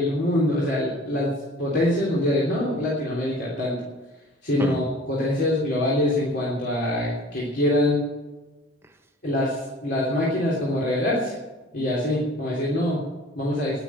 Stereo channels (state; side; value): normal; both; correlation 0.46